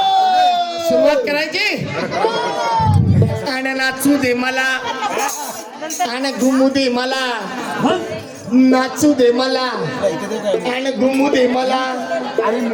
सुरुवात करायची आणि नाचू दे मला आणि घुमू दे मला, नाचू दे मला आणि घुमू दे मला,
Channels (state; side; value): identical; both; correlation 1.00